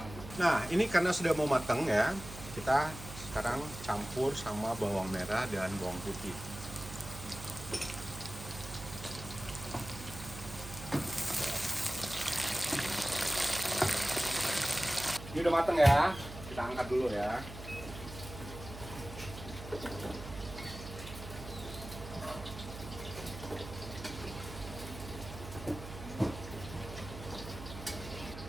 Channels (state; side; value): noise; right; hum, 11 dB below the sound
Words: Nah, ini karena sudah mau matang ya, kita sekarang campur sama bawang merah dan bawang putih. Ini udah mateng ya, kita angkat dulu ya.